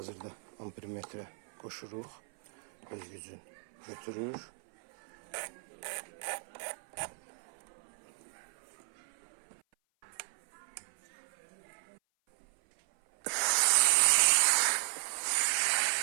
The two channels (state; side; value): silent; left; 54 dB below the other